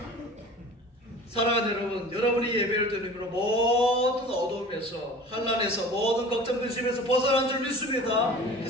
사랑하는 여러분, 여러분이 예배를 드리므로 모든 어두움에서, 환난에서, 모든 걱정 근심에서 벗어난 줄 믿습니다.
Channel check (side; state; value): both; normal; correlation 0.41